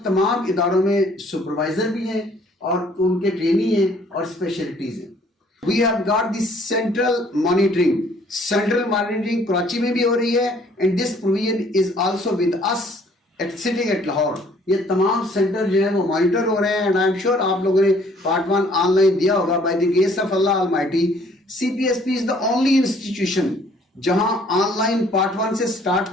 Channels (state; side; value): normal; both; correlation 0.59